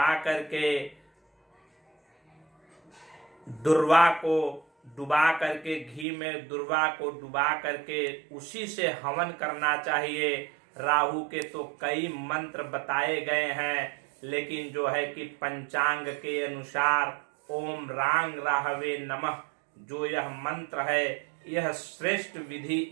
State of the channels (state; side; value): drops out; left; at 6.1 s